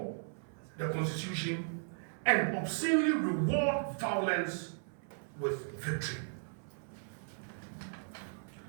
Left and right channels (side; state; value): left; silent; 54 dB below the other